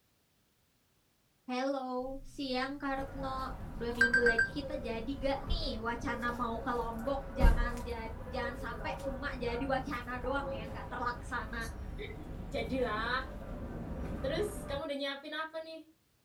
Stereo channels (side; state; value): both; identical; correlation 1.00